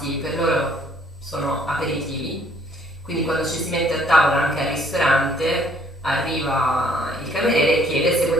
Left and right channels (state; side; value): normal; both; correlation 0.62